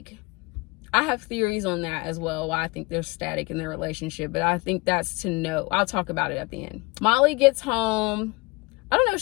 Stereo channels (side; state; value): right; quieter; 26.4 dB